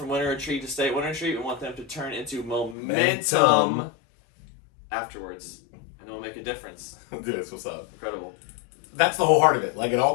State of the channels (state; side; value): drops out; right; at 2.8 s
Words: Winter Retreat to stay at Winter Retreat. We want them to turn into momentum afterwards. And it will make a difference. Dude, that's what's up. Incredible. That's the whole heart of it. Like, it